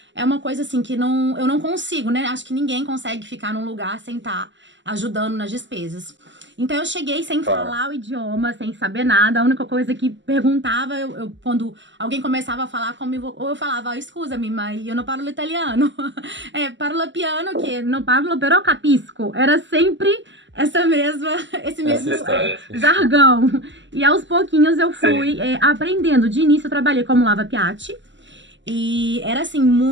é uma coisa assim que eu não consigo, né? Acho que ninguém consegue ficar num lugar sem estar ajudando nas despesas. Então eu cheguei sem falar o idioma, sem saber nada. A única coisa que perguntava, quando alguém começava a falar comigo, ou eu falava, scusami, ma io non parlo italiano. Parlo piano, que non parlo, però capisco. Era sempre esse mesmo jargão. E aos pouquinhos eu fui aprendendo. De início eu trabalhei como lava-piatti. E era, assim,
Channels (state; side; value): late; left; 0.54 ms